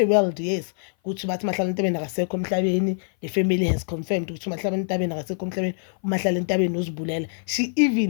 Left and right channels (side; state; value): right; silent; 56 dB below the other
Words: World, yes, ukuthi bathi Mahlala Entabeni akasekho emhlabeni. The family has confirmed ukuthi Mahlala Entabeni akasekho emhlabeni, uMahlala Entabeni uzibulela. She